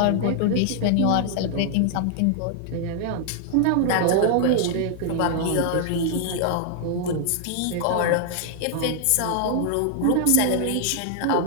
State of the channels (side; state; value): both; different; correlation -0.01